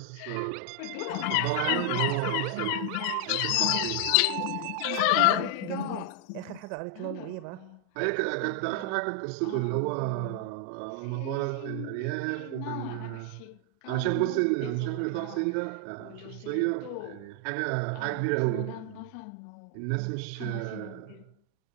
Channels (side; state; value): both; different; correlation 0.00